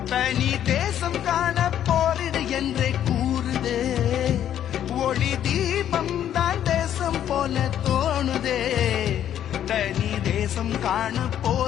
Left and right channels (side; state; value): right; quieter; 10.5 dB